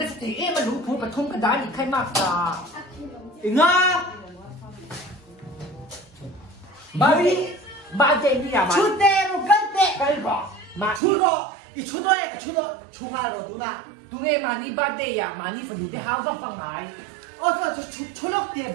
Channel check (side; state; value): left; drops out; at 11.0 s